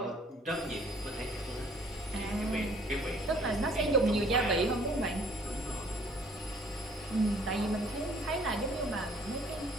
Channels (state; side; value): normal; both; correlation 0.58